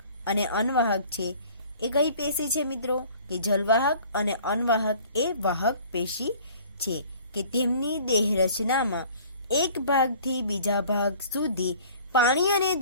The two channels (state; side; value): inverted; both; correlation -0.50